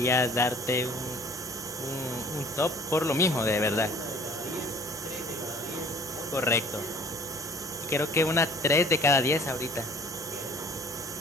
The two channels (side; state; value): both; normal; correlation 0.50